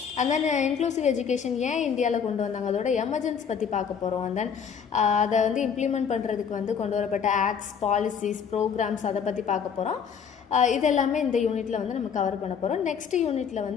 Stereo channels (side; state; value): right; quieter; 7.0 dB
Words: அண்ட் தென் இன்க்ளூசிவ் எஜுகேஷன் ஏன் இந்தியாவில் கொண்டு வந்தாங்க, அதோட எமர்ஜென்சி பற்றி பார்க்க போகிறோம். அண்ட் தென் அதை வந்து இம்ப்ளிமெண்ட் பண்ணுறதுக்கு வந்து கொண்டு வரப்பட்ட ஆக்ட்ஸ், பாலிசிஸ், ப்ரோக்ராம்ஸ் அதை பற்றி பார்க்க போகிறோம். இதெல்லாமே இந்த யூனிட்டில் வந்து நம்ம கவர் பண்ண போகிறோம். நெக்ஸ்ட் யூனிட்டில்